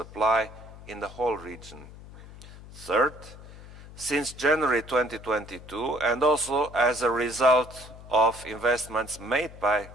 in the whole region. Third, since January 2022, and also as a result of investments made by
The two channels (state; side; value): noise; left; hum, 17 dB below the sound